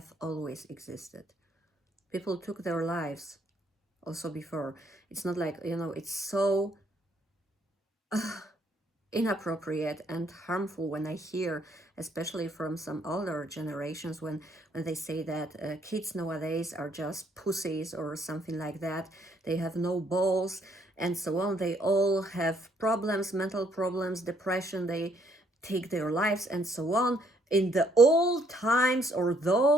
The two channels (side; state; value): both; normal; correlation 0.68